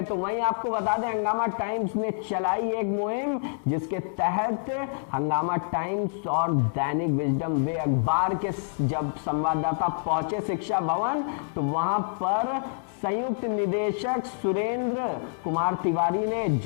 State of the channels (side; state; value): right; silent; digital silence